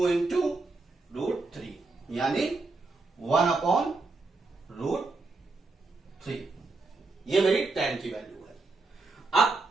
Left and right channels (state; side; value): quieter; left; 3.6 dB